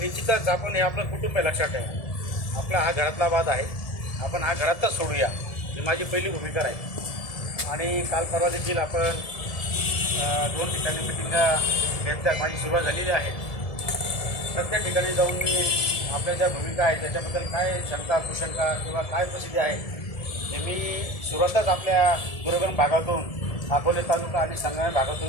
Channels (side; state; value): right; late; 1.7 ms